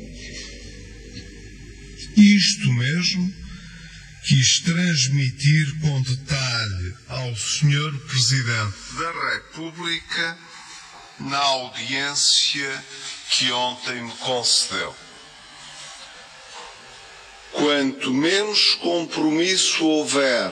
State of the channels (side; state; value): both; identical; correlation 1.00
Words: Isto mesmo quis transmitir com detalhe ao Sr. Presidente da República na audiência que ontem me concedeu. Quanto menos compromisso houver